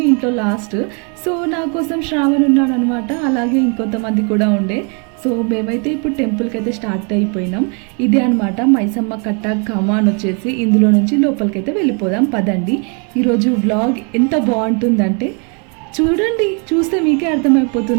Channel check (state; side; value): quieter; left; 36.7 dB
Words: ఇంట్లో లాస్ట్. సో నా కోసం శ్రావణ్ ఉన్నాడు అనమాట, అలాగే ఇంకొంతమంది కూడా ఉండే. సో మేమైతే ఇప్పుడు టెంపుల్కి అయితే స్టార్ట్ అయిపోయినాం. ఇదే అనమాట మైసమ్మ కట్ట కమాన్ వచ్చేసి. ఇందులో నుంచి లోపలికైతే వెళ్ళిపోదాం పదండి. ఈరోజు వ్లాగ్ ఎంత బాగుంటుందంటే చూడండి, చూస్తే మీకే